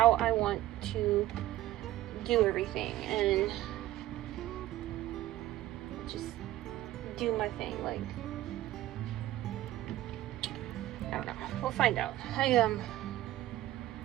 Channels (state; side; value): quieter; left; 14.9 dB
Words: I want to do everything and just do my thing. Like, I don't know. We'll find out.